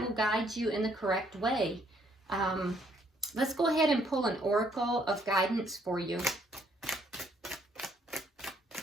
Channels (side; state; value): both; normal; correlation 0.67